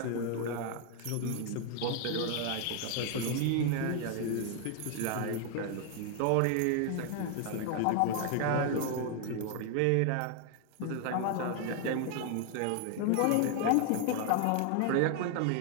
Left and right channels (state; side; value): different; both; correlation 0.00